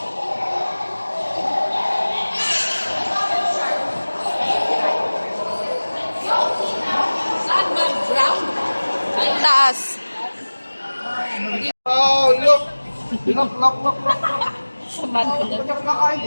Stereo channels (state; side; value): inverted; both; correlation -1.00